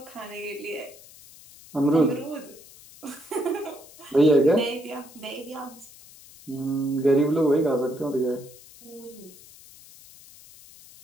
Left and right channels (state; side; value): noise; left; hiss, 21 dB below the sound